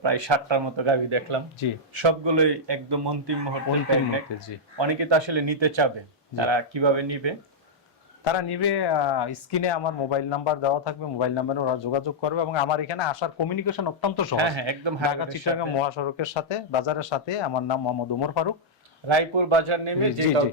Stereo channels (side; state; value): both; normal; correlation -0.07